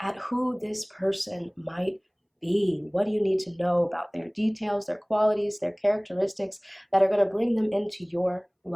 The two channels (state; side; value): identical; both; correlation 1.00